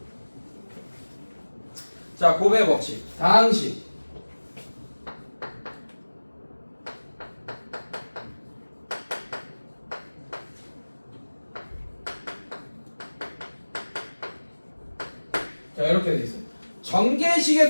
자 곱의 법칙 당식 자 이렇게 돼 있어요.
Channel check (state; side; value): inverted; both; correlation -1.00